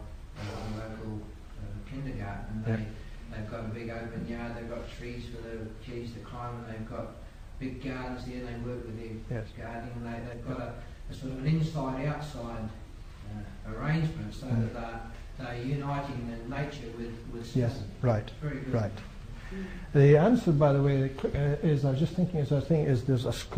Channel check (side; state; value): both; identical; correlation 1.00